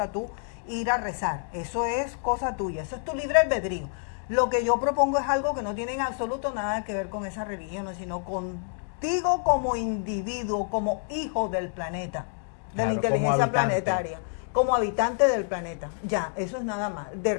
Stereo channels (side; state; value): right; silent; 60 dB below the other